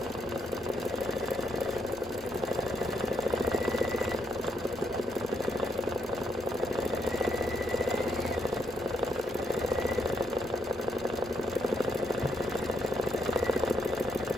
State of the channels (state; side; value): normal; both; correlation 0.76